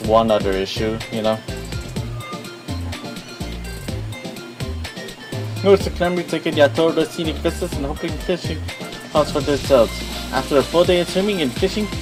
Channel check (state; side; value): identical; both; correlation 1.00